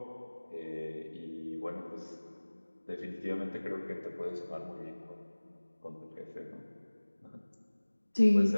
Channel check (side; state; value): both; inverted; correlation -1.00